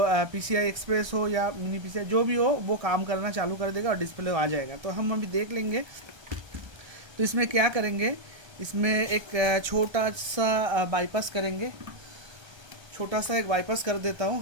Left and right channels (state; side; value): late; left; 1.3 ms